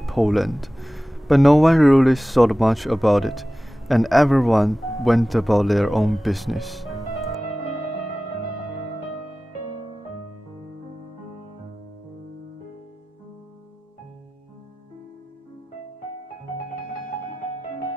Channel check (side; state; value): both; normal; correlation 0.96